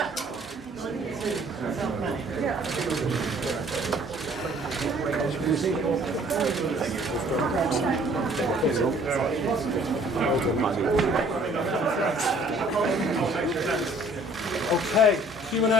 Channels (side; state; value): both; normal; correlation 0.56